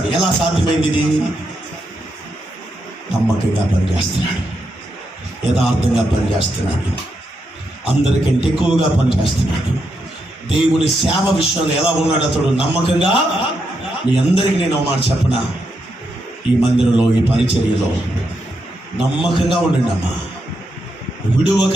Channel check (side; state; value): both; normal; correlation 0.82